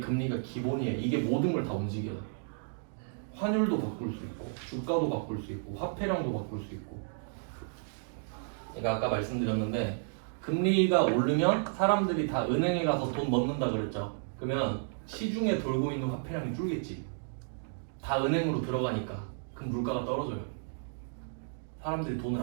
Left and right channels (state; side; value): silent; left; digital silence